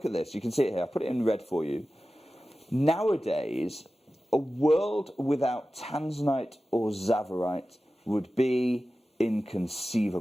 at this. You can see it here. I put it in red for you. Nowadays, a world without tanzanite or tsavorite would be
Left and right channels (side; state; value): both; normal; correlation 0.95